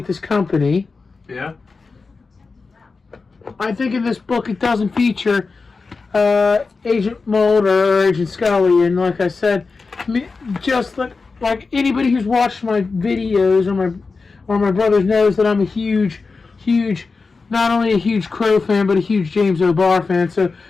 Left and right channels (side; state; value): right; quieter; 4.3 dB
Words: this company. Yeah. I think in this book it doesn't feature Agent Mulder or Agent Scully, and like I said, just like anybody who's watched my videos or my brothers knows that I'm a huge, not only a huge Crow fan, but a huge James O'Barr fan. So